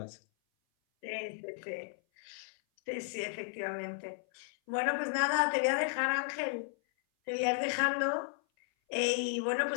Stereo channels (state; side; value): silent; right; 55 dB below the other